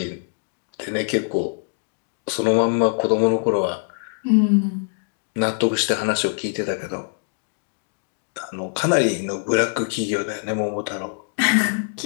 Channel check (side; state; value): right; silent; digital silence